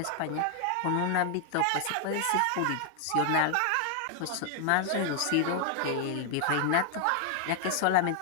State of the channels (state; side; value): different; both; correlation 0.00